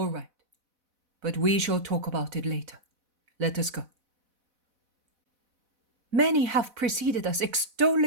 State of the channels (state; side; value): late; left; 4.0 ms